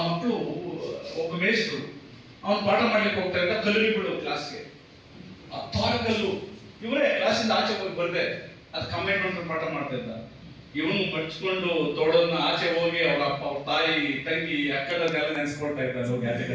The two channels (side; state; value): both; identical; correlation 1.00